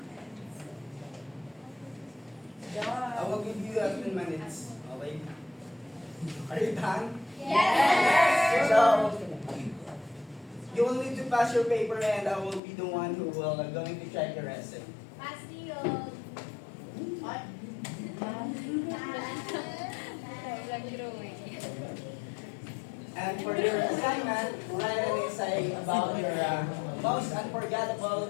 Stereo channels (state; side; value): drops out; right; at 12.6 s